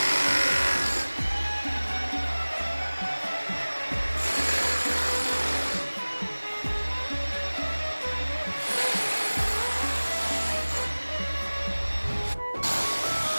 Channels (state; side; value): inverted; both; correlation -1.00